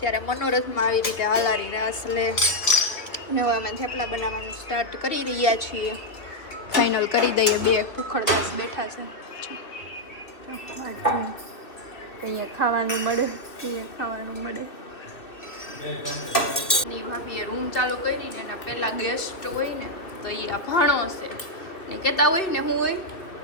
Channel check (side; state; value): right; late; 2.3 ms